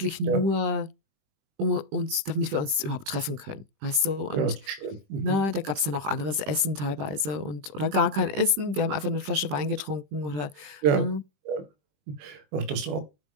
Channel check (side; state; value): left; late; 20 ms